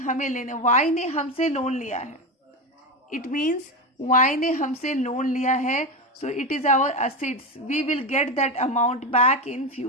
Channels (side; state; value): both; normal; correlation 0.16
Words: लेने, वाई ने हमसे लोन लिया है. इट मीन्स वाई ने हमसे लोन लिया है, so it is our assets. We will get that amount back in